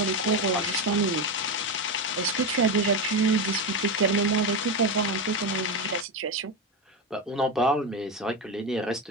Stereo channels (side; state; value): both; normal; correlation 0.14